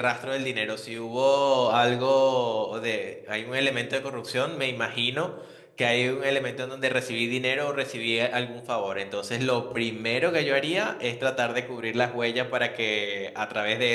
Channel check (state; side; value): identical; both; correlation 1.00